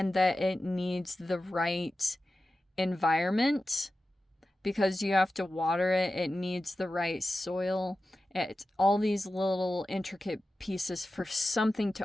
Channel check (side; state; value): both; normal; correlation 0.94